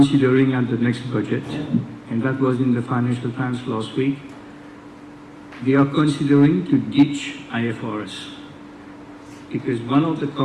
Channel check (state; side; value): identical; both; correlation 1.00